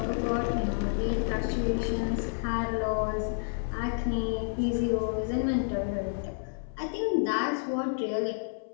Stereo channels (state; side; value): silent; right; 58 dB below the other